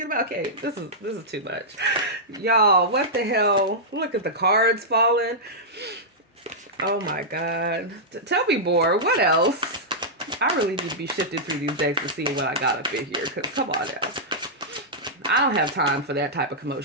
about. Okay, this is too much, y'all. What the hell? Look at the cards falling. Oh my God! Tell me more. What else? I really need to be shifting through these decks to see what I got up in here. Cause come on now. I don't have time for that type of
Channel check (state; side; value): normal; both; correlation -0.10